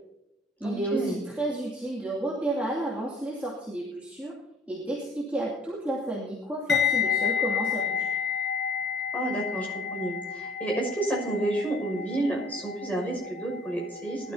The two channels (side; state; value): both; normal; correlation 0.55